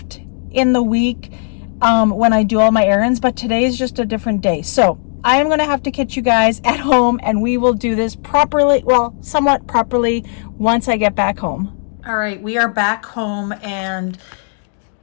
in the week when I do all my errands. But today is just a different day. So I am going to have to catch you guys at home, and we will do this properly, well, somewhat properly, once I get back home. All right, we are back home, and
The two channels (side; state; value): right; silent; 69 dB below the other